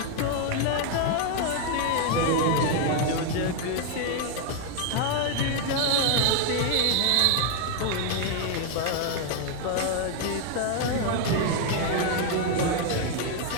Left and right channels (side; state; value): both; different; correlation 0.00